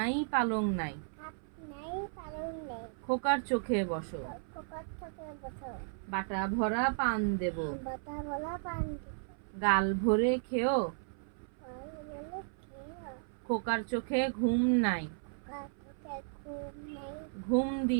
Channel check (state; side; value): silent; left; 55 dB below the other